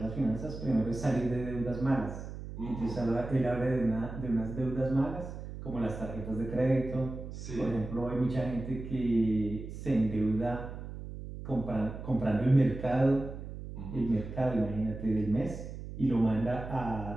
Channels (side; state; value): right; noise; hum, 10 dB below the sound